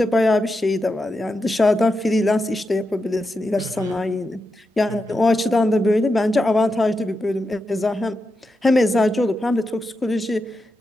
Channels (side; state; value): both; normal; correlation 0.87